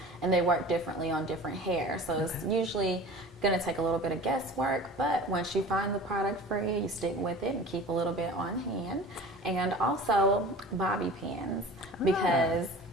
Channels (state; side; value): normal; both; correlation 0.39